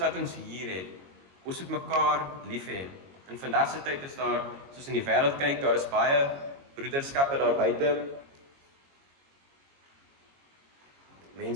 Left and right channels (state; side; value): late; left; 22 ms